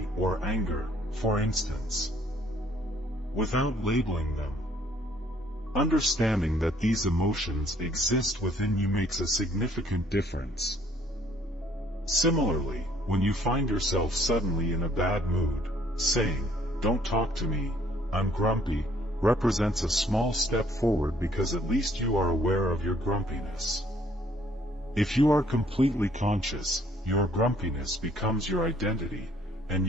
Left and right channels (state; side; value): normal; both; correlation 0.63